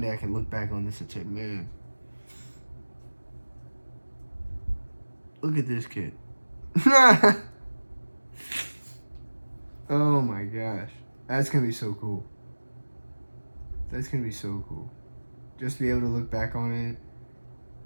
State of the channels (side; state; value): both; inverted; correlation -1.00